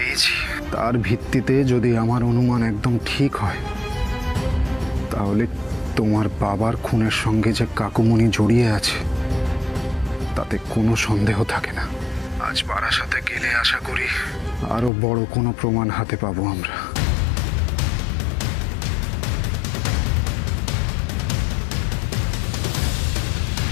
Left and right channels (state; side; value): drops out; right; at 14.9 s